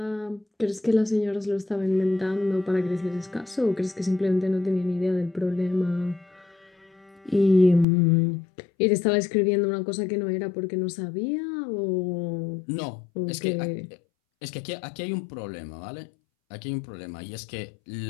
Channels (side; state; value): right; drops out; at 7.9 s